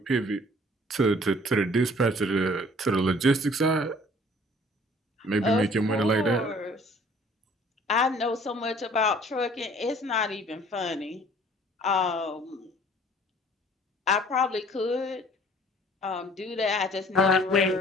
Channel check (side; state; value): both; normal; correlation 0.54